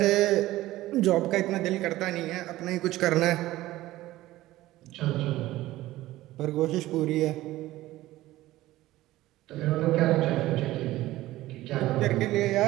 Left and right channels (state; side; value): quieter; left; 16.4 dB